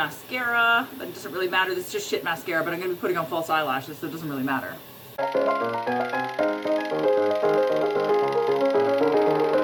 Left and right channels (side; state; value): both; identical; correlation 1.00